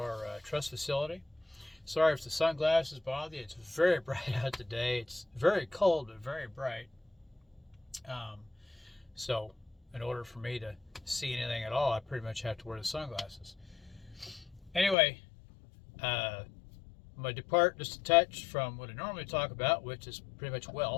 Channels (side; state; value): right; drops out; at 15.0 s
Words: truss facility. Sorry if the sunglasses bother you. It's very bright out today. It's very cold, but very bright. Um, so, in order for me to see anything at all, I pretty much have to wear the sunglasses. Anyway, I'm going to depart just a touch from what I normally talk about, which is pretty much